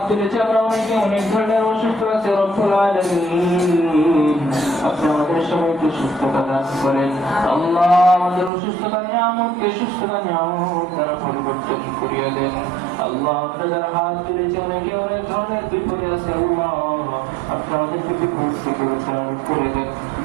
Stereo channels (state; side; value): drops out; left; at 8.5 s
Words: তুলেছি আমরা অনেকে অনেক ধরনের অসুস্থ আছে। রব্বুল আলামিন আপনি আমাদের সবাইকে সুস্থতা দান করেন। আল্লাহ আমাদের অসুস্থতা নিয়ামতকে সুস্থতা নিয়ামত দ্বারা পরিবর্তন করিয়ে দেন। আল্লাহ আমরা যারা হাত তুলেছি অনেকে অনেক ধরনের বিপদে আছে। আল্লাহ আপনি আমাদেরকে বিপদ থেকে উদ্ধার করে দেন।